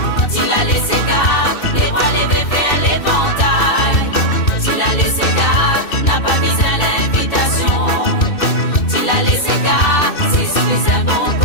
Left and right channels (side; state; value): right; late; 2.6 ms